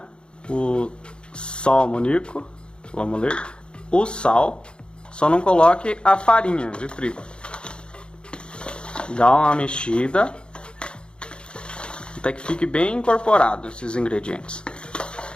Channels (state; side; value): late; right; 0.053 ms